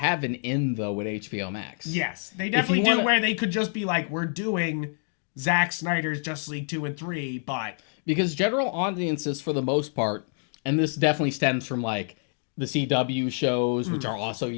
an in though with HBO Max. Yes, they definitely do, wanna- where they could just be like, we're doing Zack Snyder's Justice League 2 and 3, but Because general audiences, for the most part, and this definitely stems from like the CW shows, which are also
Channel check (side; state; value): right; silent; 60 dB below the other